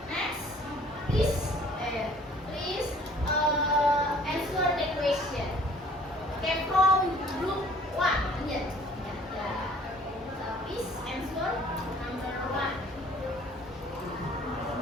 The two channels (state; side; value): normal; both; correlation 0.54